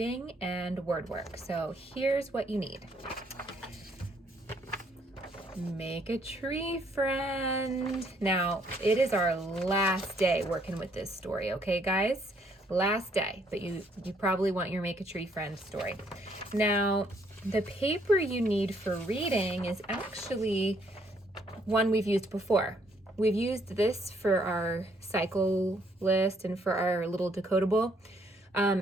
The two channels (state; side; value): normal; both; correlation 0.68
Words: and word work. So here's what you need. Make a tree friend. Now, it is our last day working with this story, okay, guys? Last day, but you probably want your make a tree friend story. Now, the paper you need for reading is actually one we've used before. We've used this for our cycle list and for our little decodable.